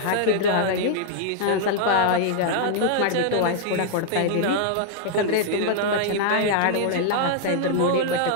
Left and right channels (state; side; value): different; both; correlation -0.01